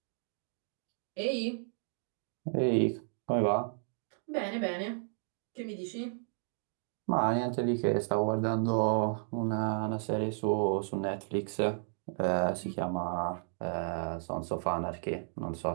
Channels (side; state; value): left; silent; digital silence